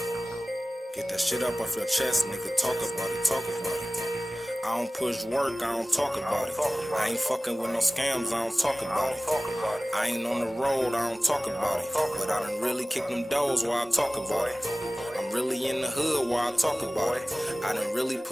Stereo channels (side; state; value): both; normal; correlation 0.98